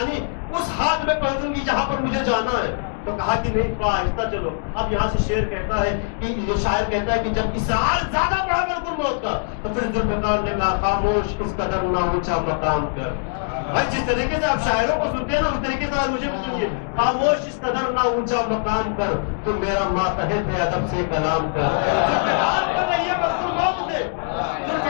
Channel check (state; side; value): silent; right; digital silence